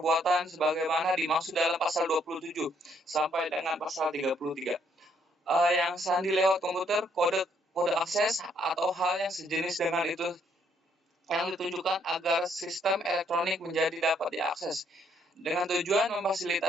sebagaimana dimaksud dalam pasal 27 sampai dengan pasal 33. Yang sandi lewat komputer, kode akses atau hal yang sejenis dengan itu yang ditunjukkan agar sistem elektronik menjadi dapat diakses dengan tujuan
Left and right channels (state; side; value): normal; both; correlation 0.69